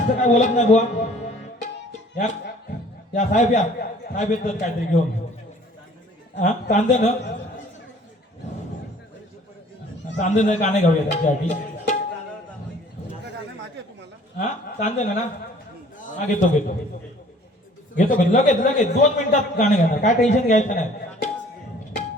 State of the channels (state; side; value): normal; both; correlation 0.53